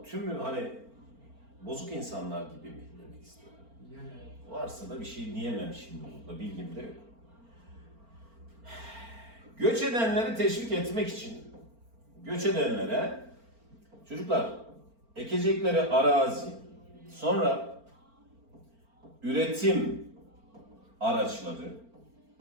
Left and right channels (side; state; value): left; late; 4.4 ms